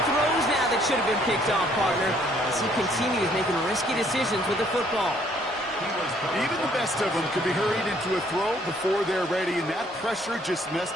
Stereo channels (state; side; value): normal; both; correlation 0.64